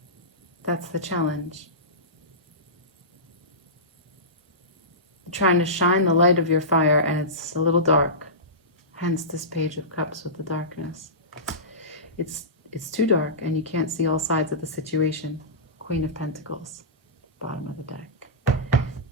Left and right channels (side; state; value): both; normal; correlation -0.19